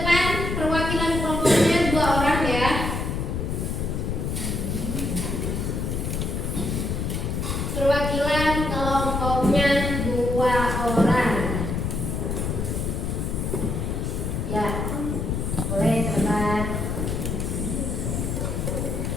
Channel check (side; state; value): left; noise; rumble, 1 dB below the sound